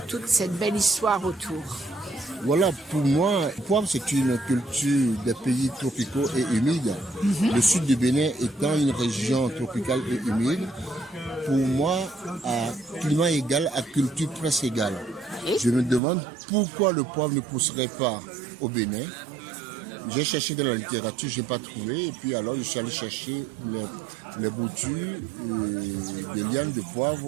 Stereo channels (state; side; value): drops out; left; at 16.0 s